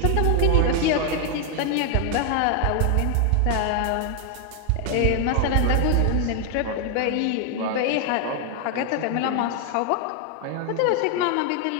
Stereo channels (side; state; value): both; different; correlation 0.00